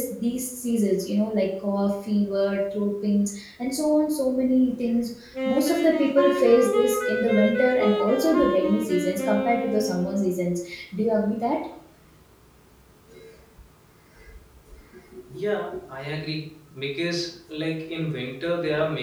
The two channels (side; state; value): both; identical; correlation 1.00